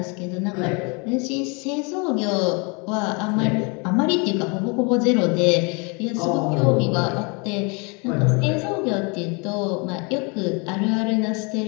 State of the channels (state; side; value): quieter; right; 31.7 dB